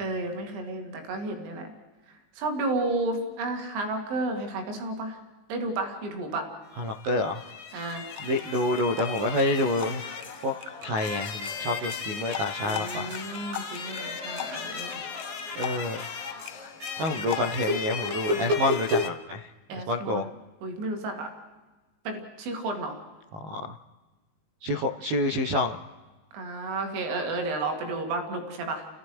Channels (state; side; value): late; left; 19 ms